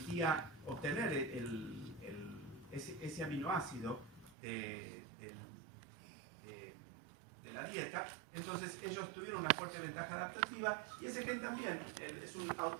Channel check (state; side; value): drops out; left; at 4.3 s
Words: obtener ese aminoácido de la dieta, entonces ellos tuvieron una fuerte ventaja adaptativa y ese gen también es un